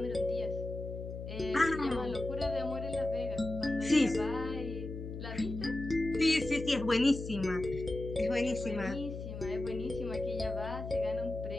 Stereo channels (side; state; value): left; noise; hum, 8 dB below the sound